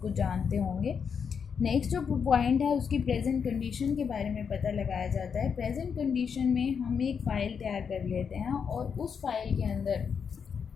कुछ जानते होंगे। नेक्स्ट जो पॉइंट है उसकी प्रेजेंट कंडीशन के बारे में पता लगाया जाता है। प्रेजेंट कंडीशन में हम एक फ़ाइल तैयार कर लेते हैं और उस फाइल के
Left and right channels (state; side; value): quieter; right; 6.6 dB